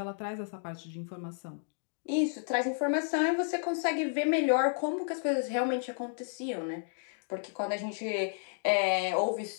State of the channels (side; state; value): right; silent; digital silence